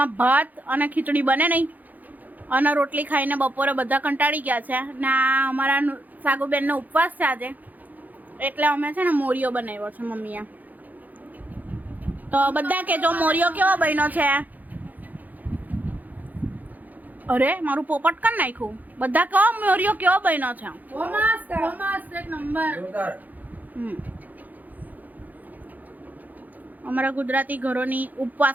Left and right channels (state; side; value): late; left; 0.082 ms